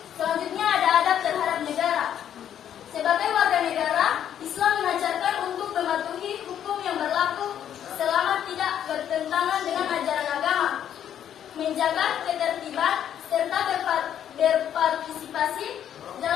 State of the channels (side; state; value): right; quieter; 9.9 dB